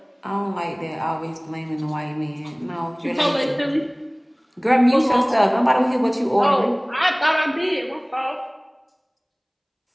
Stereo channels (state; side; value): identical; both; correlation 1.00